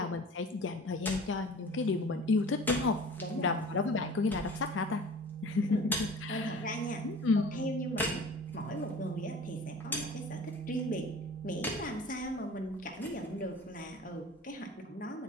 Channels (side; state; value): both; normal; correlation 0.42